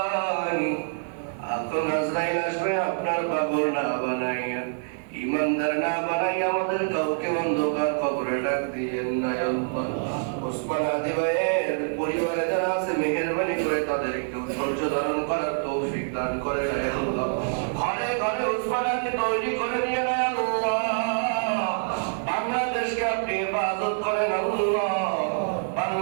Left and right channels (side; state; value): left; silent; digital silence